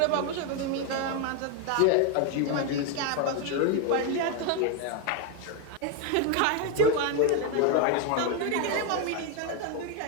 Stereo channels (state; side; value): different; both; correlation 0.01